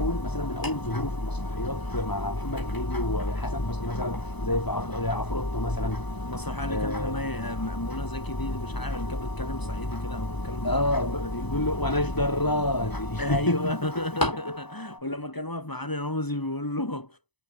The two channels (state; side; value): late; right; 1.0 ms